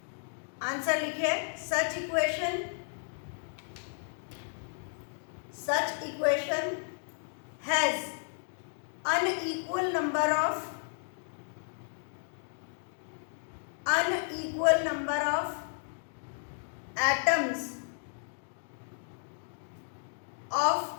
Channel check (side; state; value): right; silent; digital silence